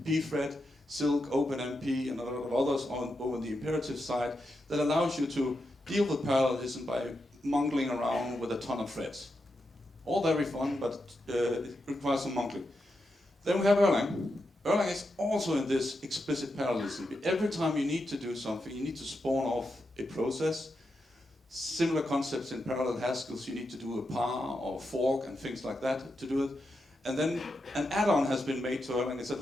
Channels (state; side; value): normal; both; correlation 0.86